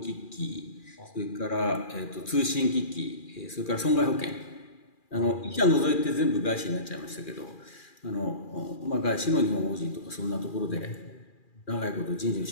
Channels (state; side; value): late; right; 2.4 ms